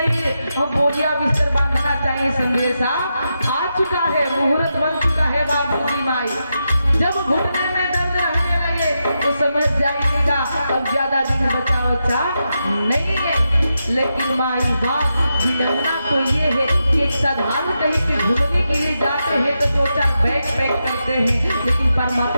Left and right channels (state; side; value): inverted; both; correlation -0.87